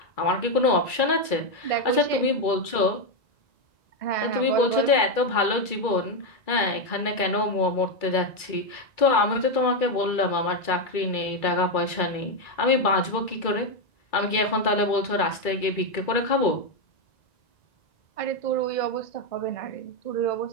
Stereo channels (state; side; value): late; right; 2.3 ms